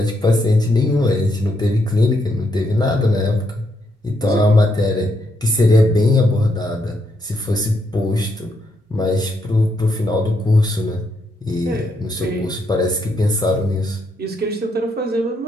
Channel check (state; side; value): normal; both; correlation 0.77